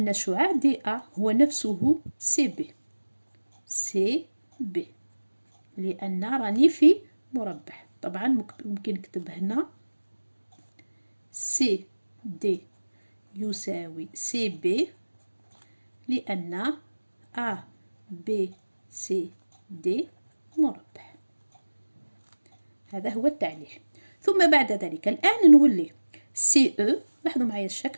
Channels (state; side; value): inverted; both; correlation -1.00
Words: شعاع دي أ هو نفسه سي بي. سي بي لأن راني في مربع. طبعا ممكن نكتب هنا سي دي يساوي سي بي، لأن أ بي سي دي مربع. هذا هو التعليل. ثم بعد ذلك الآن نولي سي أو. لاحظوا معايا